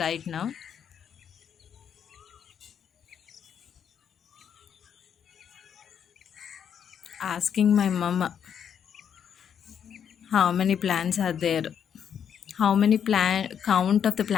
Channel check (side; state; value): right; quieter; 8.3 dB